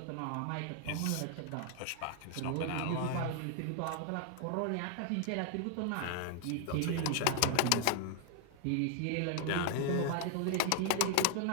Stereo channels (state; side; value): different; both; correlation 0.00